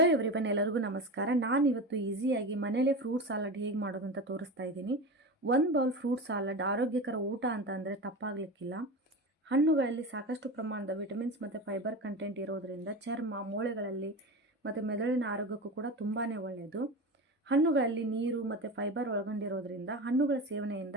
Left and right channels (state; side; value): normal; both; correlation 0.26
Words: everyone, ಎಲ್ಲರಿಗೂ ನಮಸ್ಕಾರ. ನಾನು ಇವತ್ತು ಈಸಿಯಾಗಿ ಮನೇಲೆ ಫ್ರೂಟ್ ಸಾಲಡ್ ಹೇಗೆ ಮಾಡೋದು ಅಂತ ತೋರಿಸ್ತಾ ಇದ್ದೀನಿ. 1 ಬೌಲ್ ಫ್ರೂಟ್ ಸಾಲಡ್ ಆರೋಗ್ಯಕರ ಊಟ ಅಂತ ಅಂದರೆ ತಪ್ಪಾಗಲಿಕ್ಕಿಲ್ಲ. ಹಣ್ಣುಗಳಲ್ಲಿ ಸಾಕಷ್ಟು ಪ್ರಮಾಣದ ವಿಟಮಿನ್ಸ್ ಮತ್ತು ಫೈಬರ್ ಕಂಟೆಂಟ್ ಇರೋದರಿಂದ ಚರ್ಮ, ಮೂಳೆಗಳಲ್ಲಿ ಮತ್ತು ಮೆದುಳಿನ ಆರೋಗ್ಯಕ್ಕೂ ಕೂಡ ತುಂಬಾ ಒಳ್ಳೆಯದು. ಹಣ್ಣುಗಳಲ್ಲಿ ನೀರು ಮತ್ತು ಫೈಬರ್ ಒಳಗೊಂಡಿರೋದ್ರಿಂದ ಹಣ್ಣುಗಳ